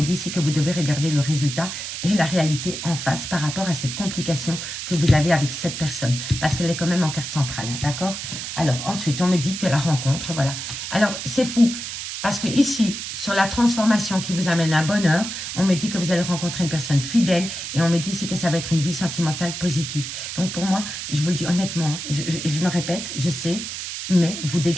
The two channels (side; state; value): right; noise; hiss, 6 dB below the sound